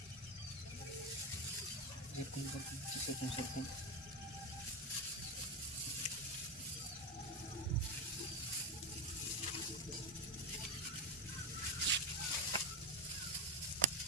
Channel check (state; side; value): normal; both; correlation 0.14